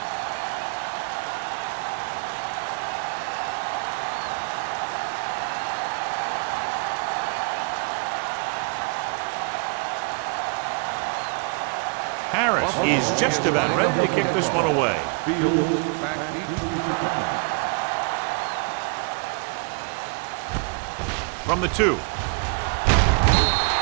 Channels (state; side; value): quieter; left; 36.5 dB